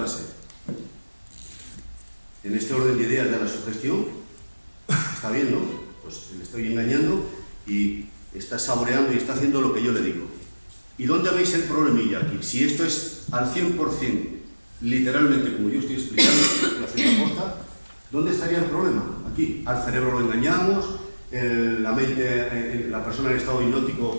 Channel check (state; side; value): inverted; both; correlation -1.00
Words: sed. En este orden de ideas de la sugestión, está viendo, pues le estoy engañando y está saboreando y está haciendo lo que yo le digo. ¿Y dónde veis el problemilla aquí? Si esto es al 100%, literalmente como yo estoy explicando, la cierta posta, ¿dónde estaría el problema? Aquí, al cerebro lo engañamos, la mente, la persona en estado